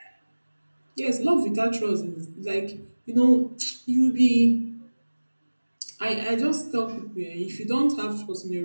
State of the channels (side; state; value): both; inverted; correlation -1.00